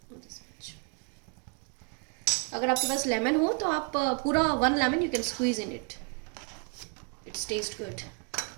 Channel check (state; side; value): quieter; left; 34.6 dB